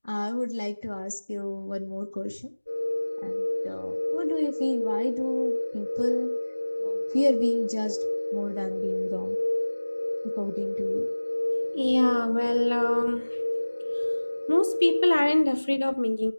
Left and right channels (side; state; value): both; inverted; correlation -1.00